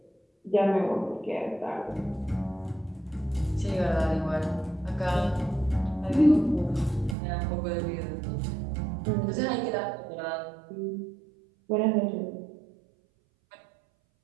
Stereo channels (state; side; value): drops out; left; at 7.2 s